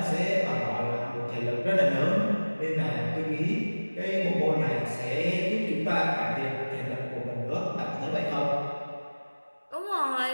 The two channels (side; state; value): both; inverted; correlation -1.00